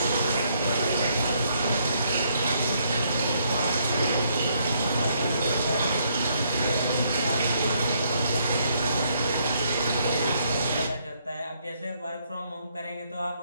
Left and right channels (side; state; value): both; inverted; correlation -0.71